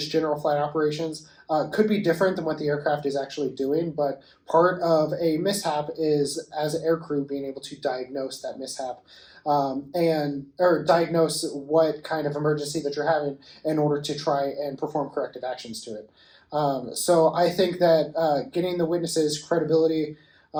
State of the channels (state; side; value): identical; both; correlation 1.00